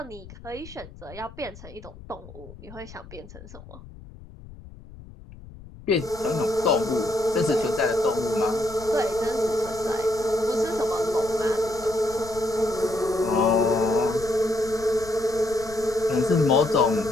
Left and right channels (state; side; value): noise; left; rumble, 17 dB below the sound